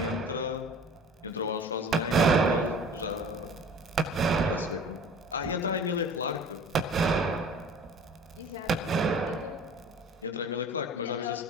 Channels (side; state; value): both; normal; correlation 0.44